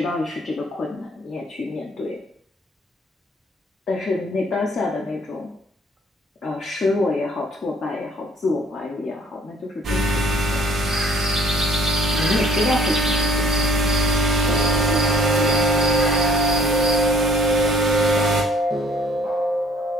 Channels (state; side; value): normal; both; correlation 0.58